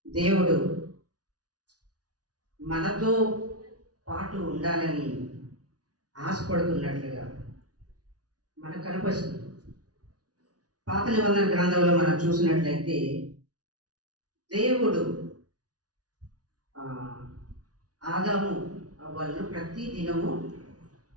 దేవుడు మనతో పాటు ఉండాలని ఆశపడుతున్నట్లుగా మనకు కనిపిస్తుంది. పాత నిబంధన గ్రంథంలో మనం చూసినట్లయితే దేవుడు ఆదాము అవ్వలను ప్రతి దినము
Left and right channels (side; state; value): left; late; 0.68 ms